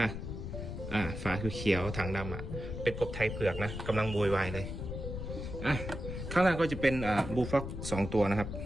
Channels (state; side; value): noise; left; rumble, 6 dB below the sound